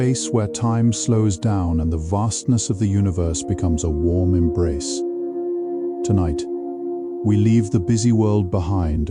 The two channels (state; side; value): identical; both; correlation 1.00